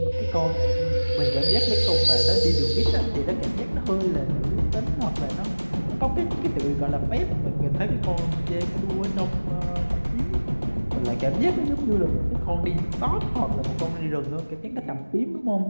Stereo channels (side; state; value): both; inverted; correlation -1.00